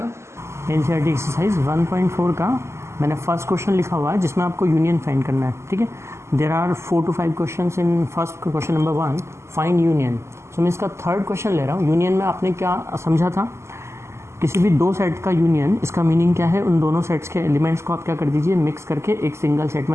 एनसीईआरटी एक्सरसाइज 1.4 का मैंने फर्स्ट क्वेश्चन लिखा हुआ है जिसमें आपको यूनियन फाइंड करना है. ठीक है, there are 4 to 5 question in first question number 1 find union. So मैं इसका थर्ड क्वेश्चन ले रहा हूँ. यूनियन में आपने क्या समझा था, किसी भी दो सेट का यूनियन, इसका मीनिंग क्या है, उन दोनों सेट्स के एलिमेंट्स को आप क्या कर दीजिए, मिक्स करके एक सिंगल सेट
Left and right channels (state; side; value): late; left; 0.13 ms